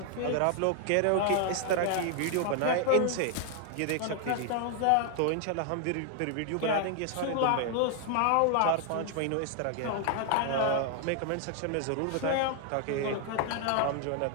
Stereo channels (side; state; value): both; different; correlation 0.00